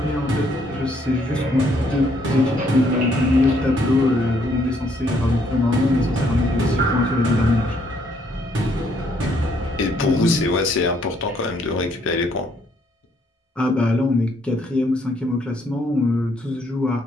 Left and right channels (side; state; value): both; normal; correlation 0.69